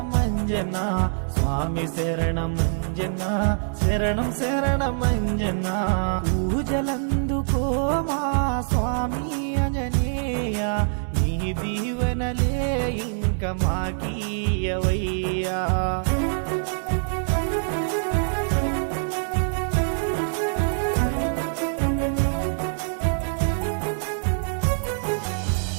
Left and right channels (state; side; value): silent; left; digital silence